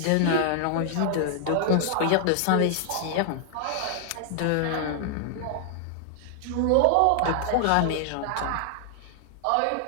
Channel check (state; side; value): different; both; correlation 0.00